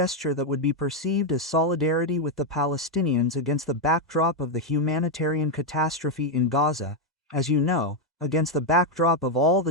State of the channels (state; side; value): normal; both; correlation 0.02